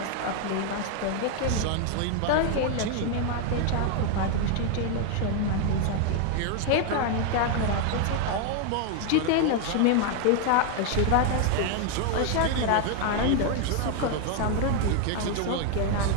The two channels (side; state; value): both; different; correlation 0.01